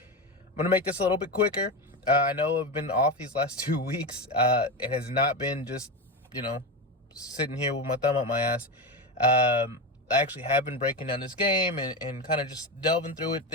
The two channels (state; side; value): normal; both; correlation 0.17